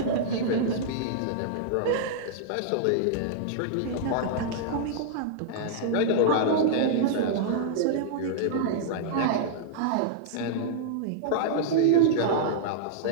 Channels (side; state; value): both; different; correlation -0.02